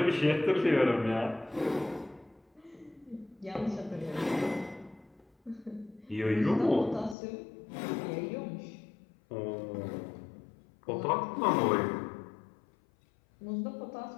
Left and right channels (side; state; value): right; drops out; at 7.2 s